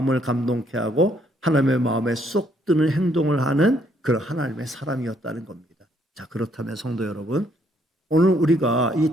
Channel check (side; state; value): both; normal; correlation 0.69